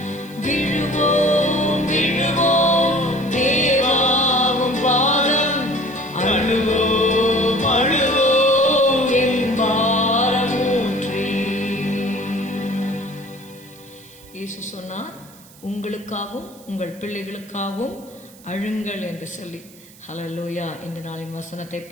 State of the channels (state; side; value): noise; right; hiss, 23 dB below the sound